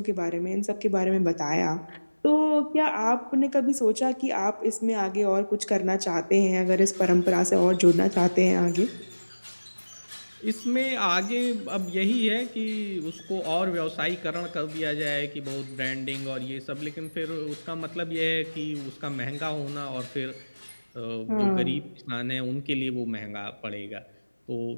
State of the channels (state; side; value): inverted; both; correlation -1.00